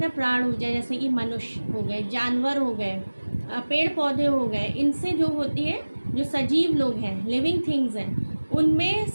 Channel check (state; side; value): inverted; both; correlation -1.00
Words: प्राण ऊर्जा, जैसे कि मनुष्य हो गए, जानवर हो गए, पेड़ पौधे हो गए, इनसे जो होती है, जो सजीव लोग हैं, लिविंग थिंग्स हैं, उनमें